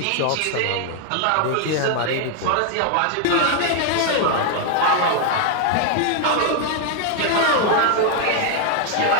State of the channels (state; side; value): different; both; correlation 0.00